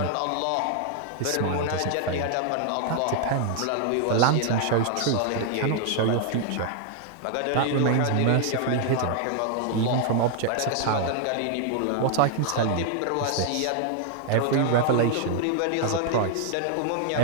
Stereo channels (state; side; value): different; both; correlation 0.00